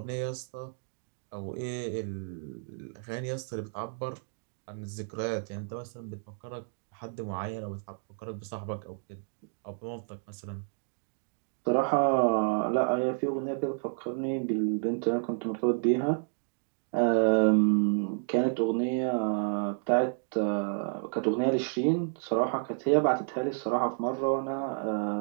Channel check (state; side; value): silent; left; digital silence